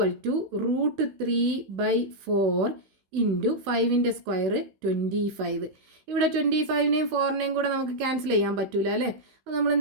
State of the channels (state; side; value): late; left; 16 ms